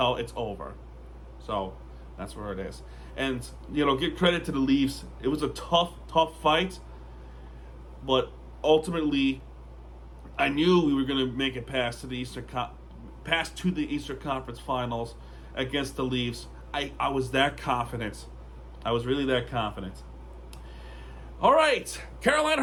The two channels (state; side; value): identical; both; correlation 1.00